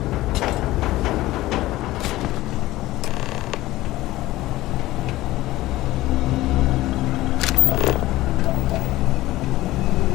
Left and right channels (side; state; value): right; quieter; 17.0 dB